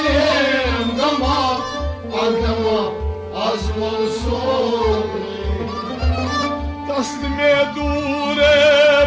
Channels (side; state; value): both; identical; correlation 1.00